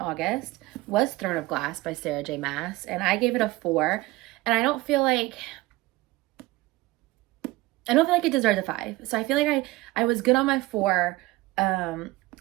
was Throne of Glass by Sarah J. Maas, and I gave it a 4. And I don't feel like it deserves a 5. So I feel like I was good on my 4.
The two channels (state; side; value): quieter; left; 19.9 dB